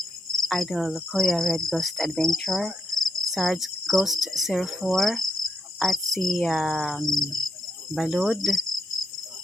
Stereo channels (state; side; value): normal; both; correlation 0.78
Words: Idol Kuya Red Ghost Adventure, Sarge Ghost 04 at si Balud